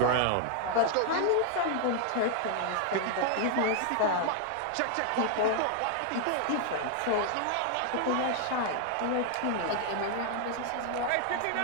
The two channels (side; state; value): both; different; correlation 0.00